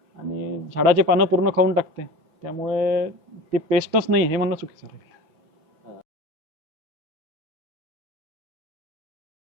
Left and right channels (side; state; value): left; late; 6.1 ms